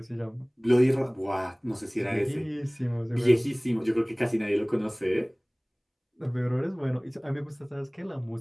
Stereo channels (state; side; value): identical; both; correlation 1.00